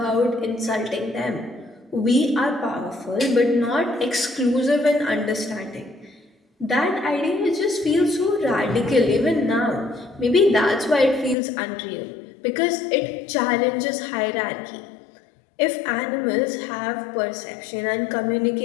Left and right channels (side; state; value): right; drops out; at 11.4 s